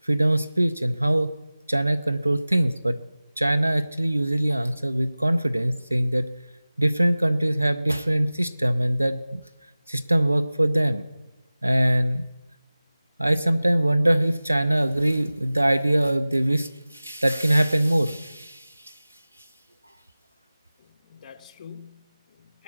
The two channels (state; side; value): inverted; both; correlation -0.98